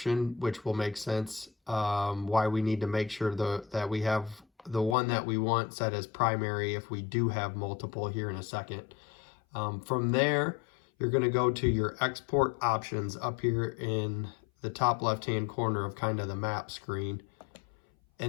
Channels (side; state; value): right; drops out; at 5.0 s